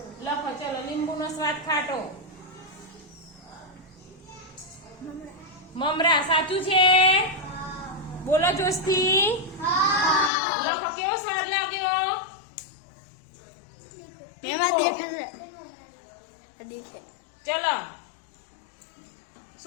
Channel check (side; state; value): right; drops out; at 10.3 s